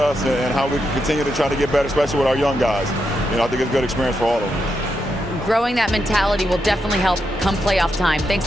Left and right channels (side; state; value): both; normal; correlation 0.84